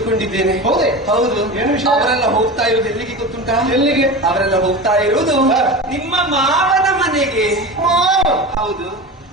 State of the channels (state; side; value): normal; both; correlation 0.28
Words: ಹೌದೇ? ಹೌದು. ಏನು ವಿಷಯ? ಅವರೆಲ್ಲ ಹೋಗ್ತಾ ಇರೋದು ಎಲ್ಲಿಗೆ ಗೊತ್ತುಂಟಾ? ಎಲ್ಲಿಗೆ? ಅವರೆಲ್ಲ ಹೋಗ್ತಾ ಇರುವುದು ನಿಮ್ಮ ಮಾವನ ಮನೆಗೆ. ಹೌದು.